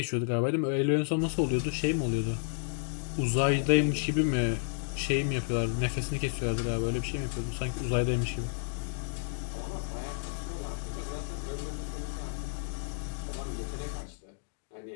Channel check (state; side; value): silent; right; digital silence